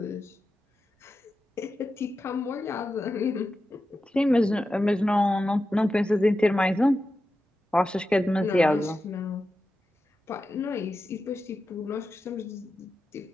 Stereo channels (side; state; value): both; normal; correlation 0.91